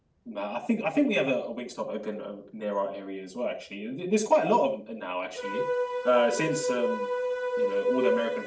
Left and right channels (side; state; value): both; identical; correlation 1.00